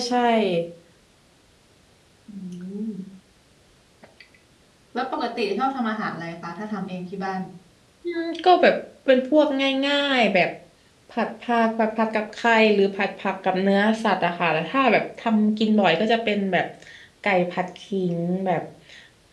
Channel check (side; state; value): both; identical; correlation 1.00